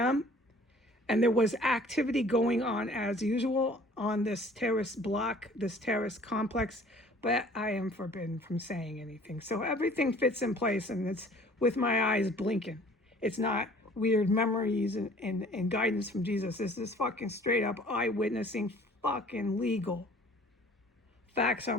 and there was activity going on as usual on this terrorist block, this terrorist complex, but I am forbidden from saying anything. So everything fits in place, and it's with my eyes blinking. It's not weird memories and guidance from Jesus. This is fucking straight up eyewitnessing, fucking legal. Facts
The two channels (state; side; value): normal; both; correlation 0.52